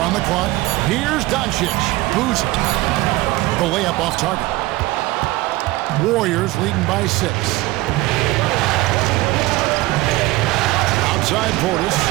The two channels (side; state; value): left; quieter; 19.1 dB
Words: on the clock. Here's Doncic. Boozer. The layup off target. Warriors leading by 6. Outside Portis.